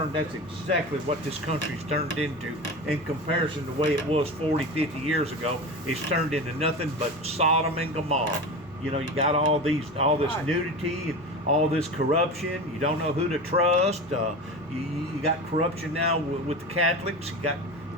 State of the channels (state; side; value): normal; both; correlation 0.28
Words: that's exactly what this country's turned into in comparison to the way it was 40, 50 years ago. It's turned into nothing but Sodom and Gomorrah. You know, you got all this Right. nudity and all this corruption. You don't know who to trust. You got corruption now with the Catholics. You got